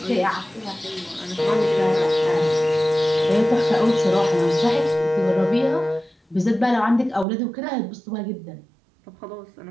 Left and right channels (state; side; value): drops out; left; at 7.2 s